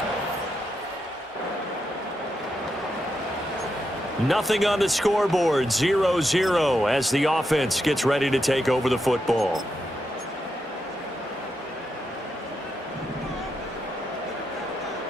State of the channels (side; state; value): both; normal; correlation 0.84